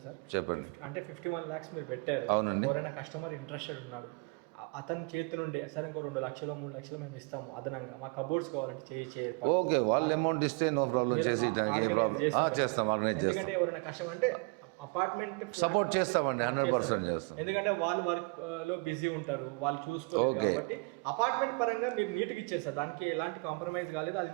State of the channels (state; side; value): quieter; left; 31.1 dB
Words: సార్, చెప్పండి. అంటే 51 lakhs మీరు పెట్టారు, ఎవరైనా కస్టమర్ ఇంట్రెస్టెడ్ ఉన్నాడు, అతని చేతి నుండి సార్ ఇంకో 2 లక్షలు 3 లక్షలు మేము ఇస్తాము అదనంగా, మా కబోర్డ్స్ కావాలంటే ఓకే, వాళ్ళ అమౌంట్ ఇస్తే నో ప్రాబ్లం, చేస్తాం. ఎందుకంటే ఎవరైనా కస్టమర్ అంటే అపార్ట్మెంట్ సపోర్ట్ చేస్తామండి, 100% చేస్తాం. ఎందుకంటే వాళ్ళు వర్క్ లో బిజీ ఉంటారు, వాళ్ళు చూసుకోలేదు కాబట్టి అపార్ట్మెంట్ పరంగా మీరు నీట్గా ఇచ్చారు సార్, దానికి ఎలాంటి కాంప్రమైజ్ కాలేదు, అది